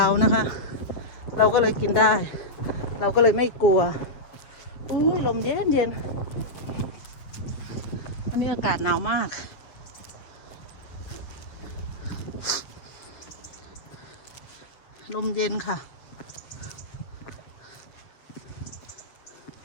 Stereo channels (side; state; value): right; late; 7.6 ms